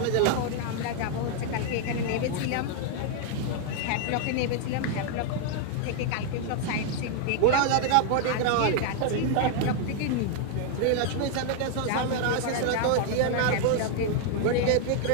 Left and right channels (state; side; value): different; both; correlation 0.00